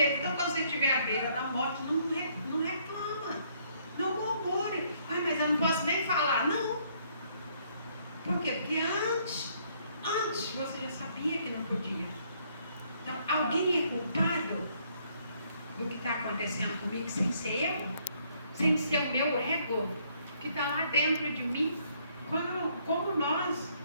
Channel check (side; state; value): both; inverted; correlation -0.67